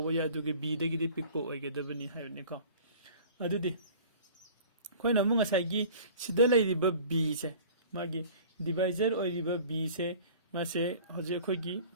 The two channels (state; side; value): inverted; both; correlation -0.45